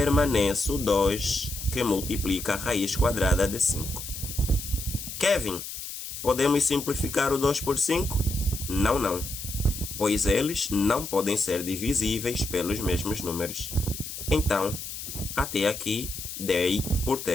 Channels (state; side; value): noise; left; hiss, 8 dB below the sound